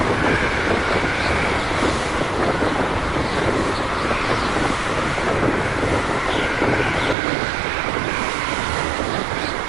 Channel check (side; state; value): left; drops out; at 7.2 s